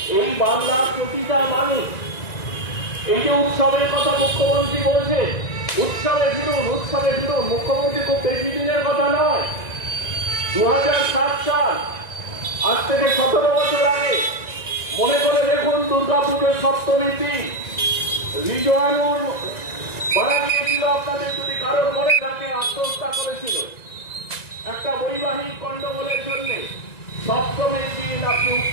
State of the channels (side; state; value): right; late; 1.9 ms